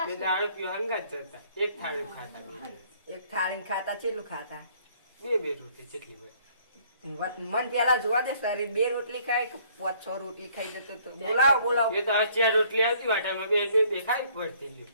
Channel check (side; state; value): both; inverted; correlation -0.61